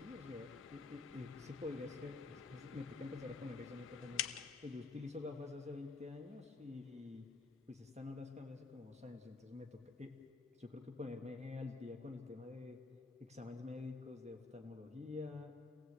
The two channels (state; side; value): quieter; right; 4.1 dB